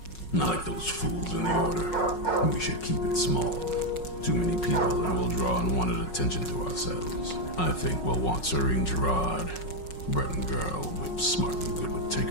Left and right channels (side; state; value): right; late; 5.4 ms